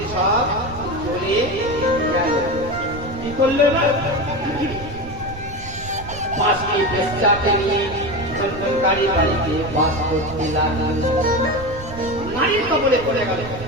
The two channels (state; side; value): noise; right; rumble, 13 dB below the sound